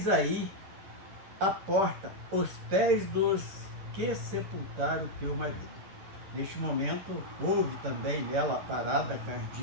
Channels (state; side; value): late; left; 10 ms